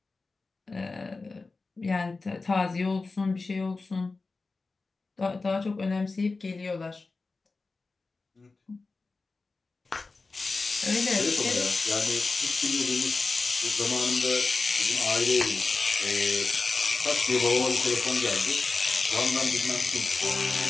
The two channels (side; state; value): right; quieter; 3.8 dB